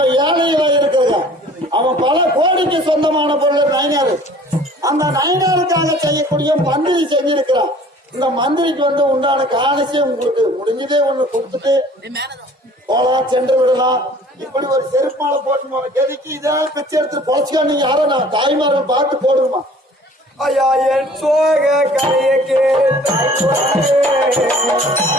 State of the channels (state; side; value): normal; both; correlation 0.50